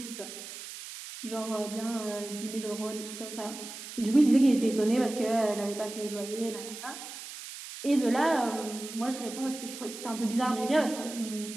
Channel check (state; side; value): noise; right; hiss, 11 dB below the sound